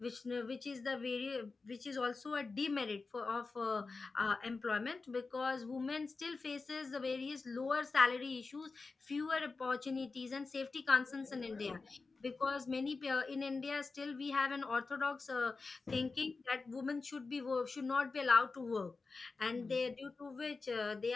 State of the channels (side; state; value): right; quieter; 4.1 dB